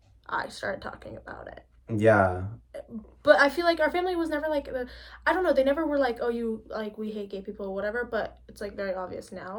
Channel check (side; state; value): both; identical; correlation 1.00